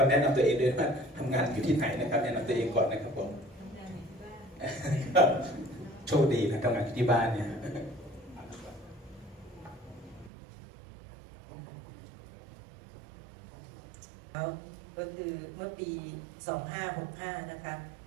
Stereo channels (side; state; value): left; drops out; at 10.3 s